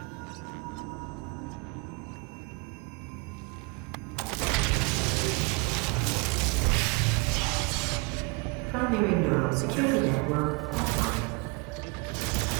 Primary neural security network offline.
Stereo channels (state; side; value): quieter; left; 28.4 dB